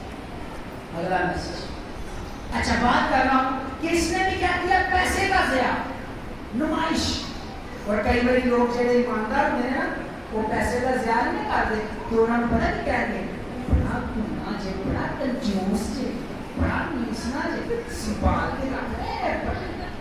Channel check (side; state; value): both; identical; correlation 1.00